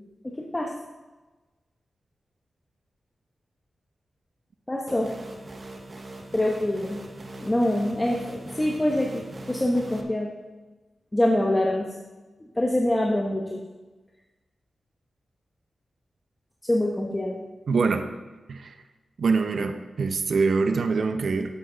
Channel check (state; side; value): normal; both; correlation 0.93